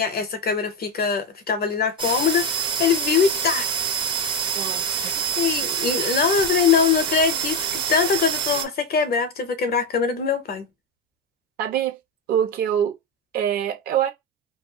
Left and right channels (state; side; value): normal; both; correlation 0.10